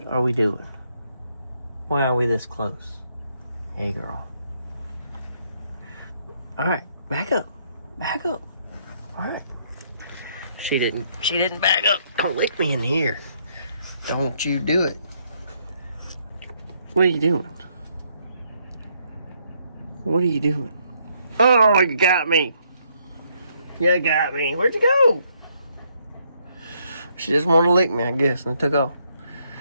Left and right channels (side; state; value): both; inverted; correlation -0.71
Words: are we doing? Why are we this close? Hey girl. All right, back up. All right. She didn't back up. Don't lick me in here. Don't you do it. What are you doing? What are you doing? Oh, you got me. You got me. Where'd you go? She just wanted to lick me, I guess, and it took off.